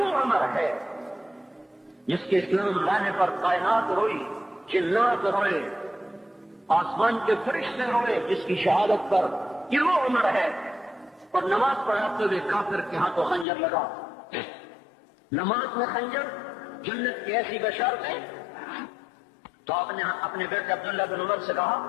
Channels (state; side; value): drops out; right; at 13.5 s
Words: عمر ہے جس کے اسلام لانے پر کائنات روئی، جنات روئے، آسمان کے فرشتے روئے جس کی شہادت پر. یہ وہ عمر ہے. اور نماز پڑھاتے ہوئے کافر کے ہاتھوں خنجر لگا. نماز میں خنجر، جنت کی ایسی بشارتیں. تو آپ نے اپنے بیٹے عبداللہ بن عمر سے